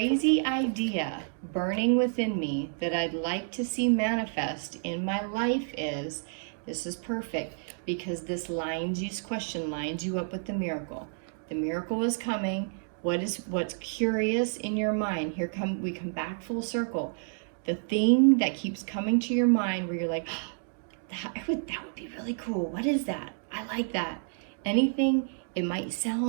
idea burning within me that I'd like to see manifest in my life is, this is perfect, because this question lines you up with the miracle. The miracle is coming. What's curious in your mind? We come back full circle. The thing that keeps coming to your mind where you're like, that would be really cool. What is that? I like that. Anything, it might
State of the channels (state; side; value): silent; left; digital silence